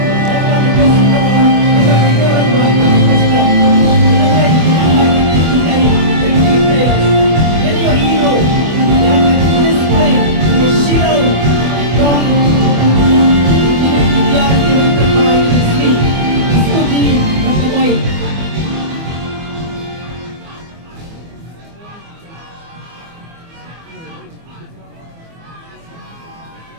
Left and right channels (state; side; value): late; left; 24 ms